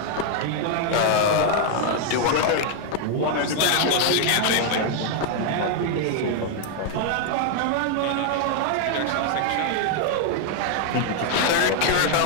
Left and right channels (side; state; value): both; different; correlation 0.00